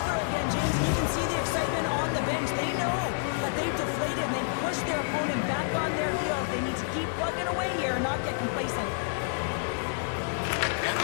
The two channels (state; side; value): silent; right; digital silence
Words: again, James. You can see the excitement on the bench. They know that they've deflated and they've pushed their opponent back on their heels. They need to keep plugging away here and not get complacent. And